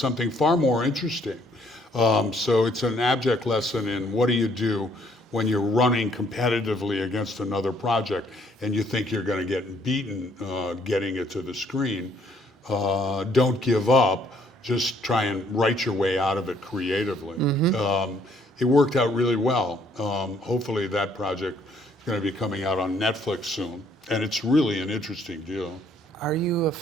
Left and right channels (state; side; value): normal; both; correlation 0.65